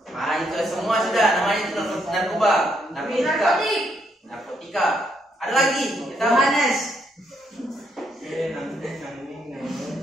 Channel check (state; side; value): normal; both; correlation 0.74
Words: Itu semua sudah namanya itu narkoba. Narkotika. Ada lagi? Kita Yohanes.